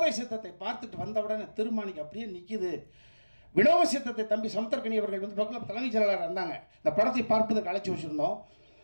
சித்தத்தை பார்த்துட்டு வந்தவுடனே திருமாணிக்கு அப்படியே நிற்கிது. வினோத சித்தத்தை தம்பி சமுத்திரக்கனி அவர்கள் பக்கத்தில் தலைமைச் செயலாளர் இருந்தாங்க. இந்த படத்தை பார்ப்பதற்கு அழைச்சி வச்சுருந்தோம்.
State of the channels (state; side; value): inverted; both; correlation -1.00